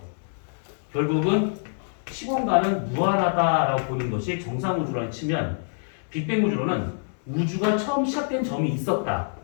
결국은 시공간은 무한하다라고 보는 것이 정상우주론에 치면, 빅뱅 우주론은 우주가 처음 시작된 점이 있었다.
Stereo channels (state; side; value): silent; right; digital silence